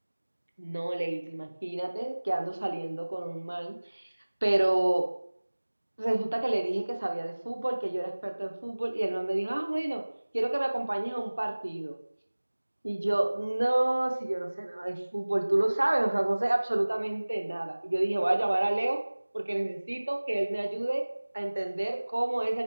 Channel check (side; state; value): both; inverted; correlation -1.00